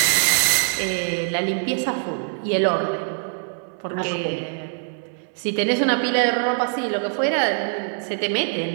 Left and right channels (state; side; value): silent; left; 62 dB below the other